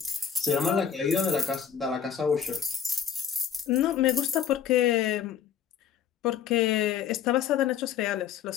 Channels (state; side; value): quieter; right; 8.2 dB